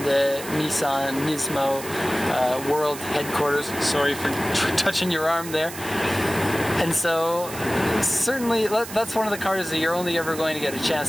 the Nismo world headquarters. Sorry for touching your arm there. And so certainly, that's one of the cars that you're only ever going to get a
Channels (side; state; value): right; noise; hiss, 12 dB below the sound